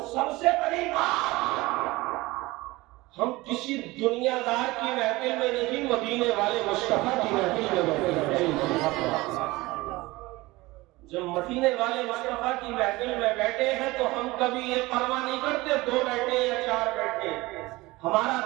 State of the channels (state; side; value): quieter; left; 20.8 dB